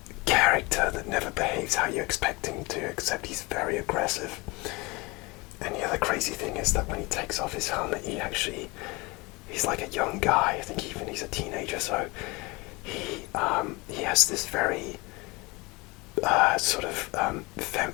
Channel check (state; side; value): quieter; right; 25.0 dB